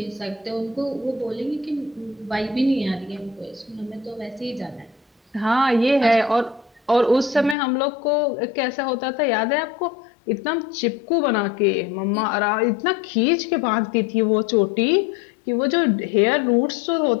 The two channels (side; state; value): right; drops out; at 7.6 s